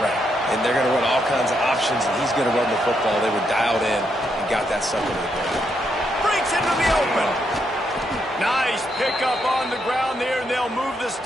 and they're going to run all kinds of options, and he's going to run the football. They were dialed in and got that sucker to the ground. Breaks into the open. Nice pickup on the ground there, and they'll move the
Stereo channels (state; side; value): normal; both; correlation 0.78